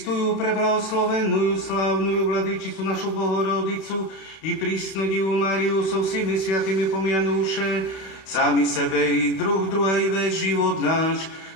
preblahoslavenú, slávnu Vladyčicu našu Bohorodicu i prísnu Divu Máriu so všemi sviatými pomianúše, sami sebe i druhej vec život náš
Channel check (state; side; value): late; right; 31 ms